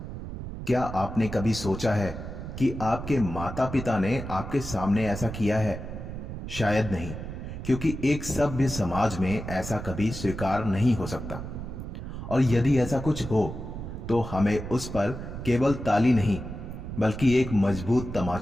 क्या आपने कभी सोचा है कि आपके माता पिता ने आपके सामने ऐसा किया है? शायद नहीं, क्योंकि एक सभ्य समाज में ऐसा कभी स्वीकार नहीं हो सकता। और यदि ऐसा कुछ हो तो हमें उस पर केवल ताली नहीं बल्कि एक मजबूत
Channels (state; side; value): noise; right; rumble, 8 dB below the sound